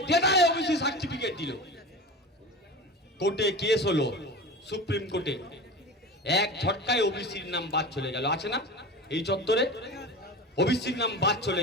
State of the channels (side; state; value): both; normal; correlation 0.31